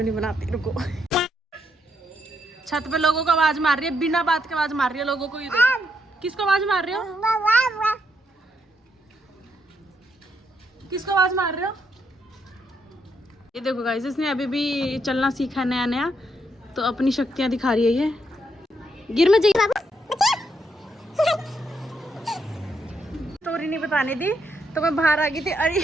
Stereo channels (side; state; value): both; normal; correlation 0.77